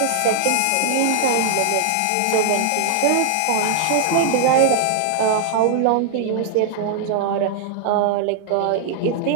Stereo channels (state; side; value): different; both; correlation -0.01